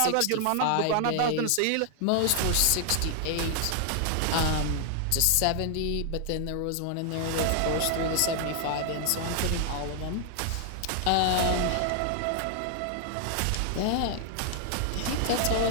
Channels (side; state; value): both; different; correlation 0.00